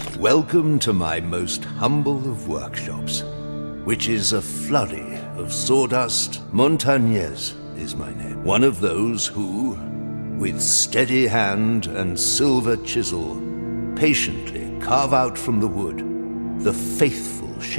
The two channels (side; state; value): both; inverted; correlation -1.00